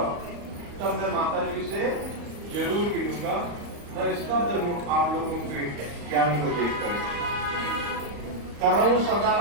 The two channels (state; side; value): late; left; 35 ms